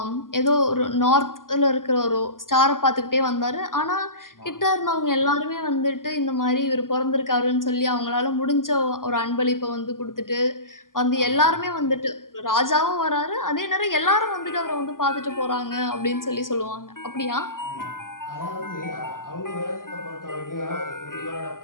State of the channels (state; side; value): late; right; 0.90 ms